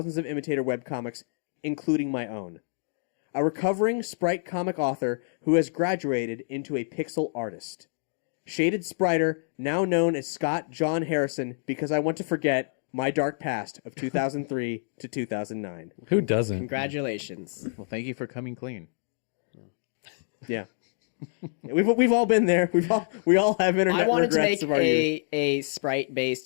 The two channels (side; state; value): right; silent; digital silence